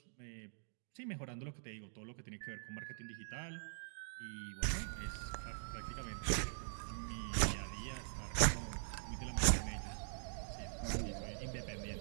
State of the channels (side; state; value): left; silent; digital silence